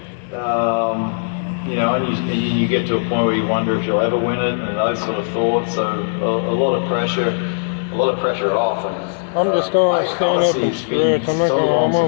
You know, and you get to a point where you wonder if you'll ever win it, and those sort of thoughts. So a lot of pressure off. And, I'm just gonna stand up and stretch. I'm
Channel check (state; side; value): silent; right; 66 dB below the other